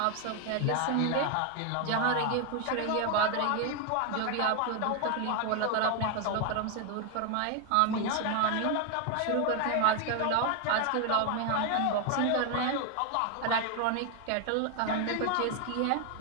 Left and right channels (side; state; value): both; different; correlation 0.01